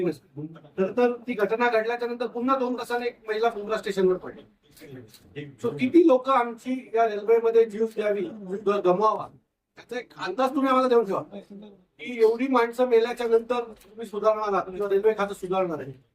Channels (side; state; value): both; identical; correlation 1.00